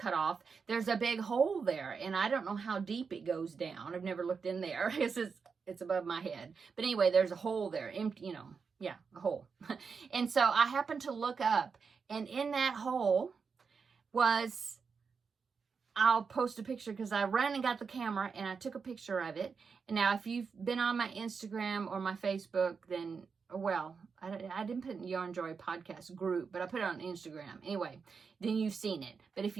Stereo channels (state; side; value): quieter; left; 5.5 dB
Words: off, there's a big hole there, and I don't know how deep it goes down. I've never looked in there. It's above my head. But anyway, there's a hole there, empty, a hole. And so I happened to look up, and in that hole was, I'll post a picture because I ran and got the camera and I took a picture of it. And now, if you've been on my Instagram or my Facebook, then, well, I didn't put it in the Yarnjoy podcast group, but I put it on Instagram. Anyway, then you've seen it. But if